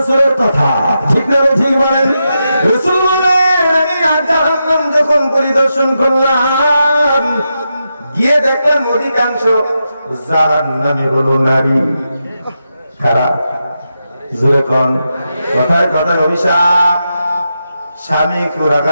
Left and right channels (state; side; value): inverted; both; correlation -0.87